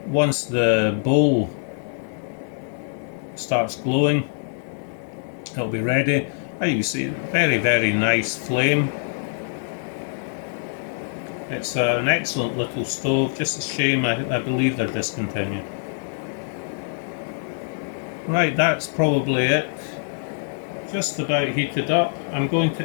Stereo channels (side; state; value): right; silent; digital silence